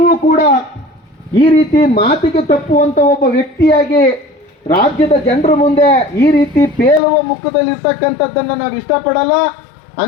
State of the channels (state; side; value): drops out; right; at 7.0 s